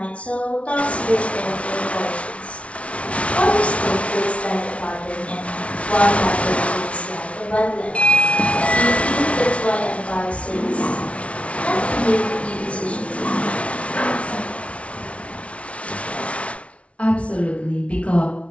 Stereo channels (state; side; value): late; right; 0.063 ms